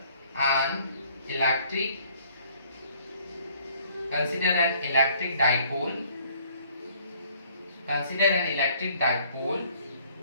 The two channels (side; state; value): both; inverted; correlation -0.60